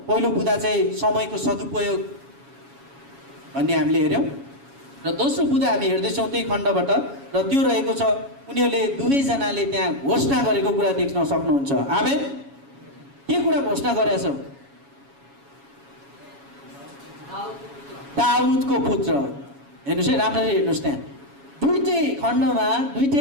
पहिलो बुँदा चाहिँ समयको सदुपयोग भन्ने हामीले हेऱ्यौँ र दोस्रो बुँदा हामी हेर्दैछौँ त्यही खण्डबाट र त्यो रहेको छ उनीहरूले 2 जनाले त्यहाँ घोषणा गरेको कुरा देख्न सक्नुहुन्छ। आमेन। के कुरा घोषणा गरेछ? दाउदको पुत्र। हेर्नुहोस् है, राम्ररी हेर्नुहोस्। त्यहाँ 2टै खण्डमा 2टै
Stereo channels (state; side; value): late; left; 7.2 ms